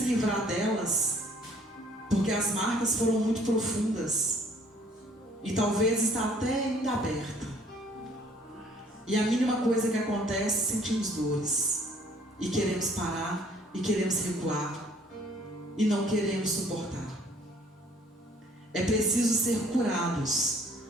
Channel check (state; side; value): normal; both; correlation 0.58